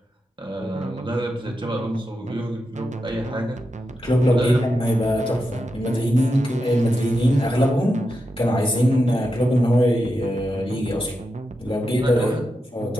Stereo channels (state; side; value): normal; both; correlation 0.88